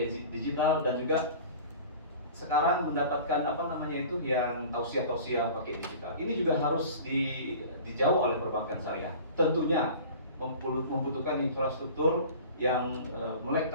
digital, dan juga sekarang mendapatkan yang tausiah pakai digital. Ini juga harus dijawab oleh perbankan syariah. Tentunya membutuhkan infrastruktur yang melek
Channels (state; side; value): inverted; both; correlation -0.41